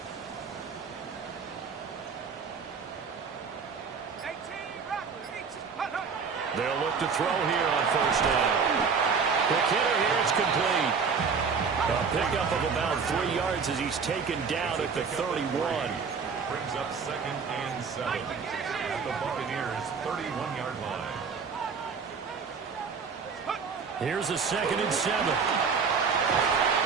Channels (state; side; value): quieter; left; 5.6 dB